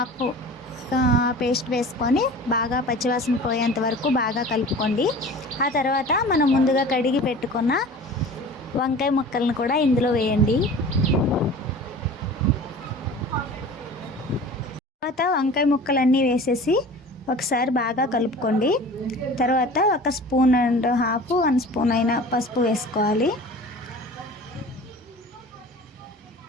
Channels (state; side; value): normal; both; correlation 0.40